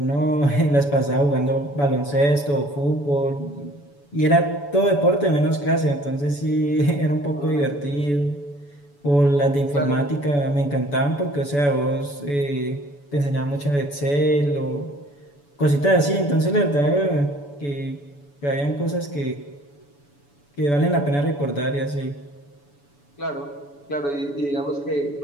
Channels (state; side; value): late; right; 7.0 ms